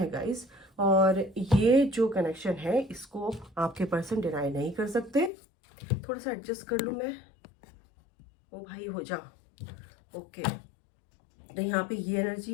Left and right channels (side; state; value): right; drops out; at 5.3 s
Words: गाइस, और ये जो कनेक्शन है इसको आपके पर्सन डिनाई नहीं कर सकते। थोड़ा सा एडजस्ट कर लूँ मैं, ओ भाई हो जा। ओके, तो यहाँ पे ये